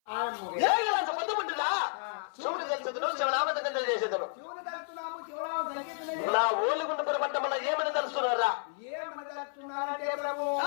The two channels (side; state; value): right; silent; 57 dB below the other